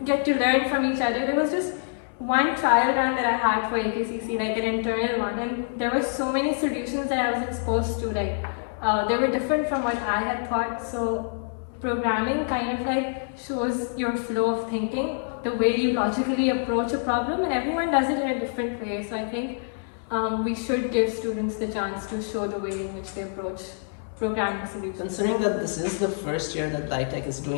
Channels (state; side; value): silent; right; digital silence